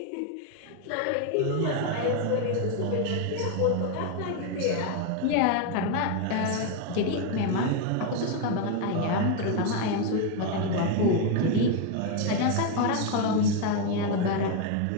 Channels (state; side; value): different; both; correlation 0.01